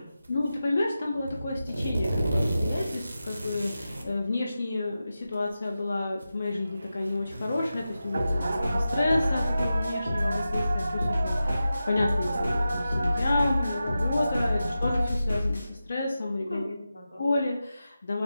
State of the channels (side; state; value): both; inverted; correlation -0.92